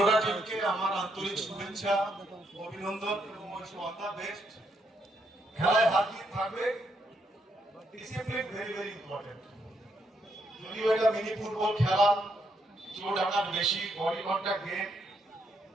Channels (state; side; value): normal; both; correlation 0.76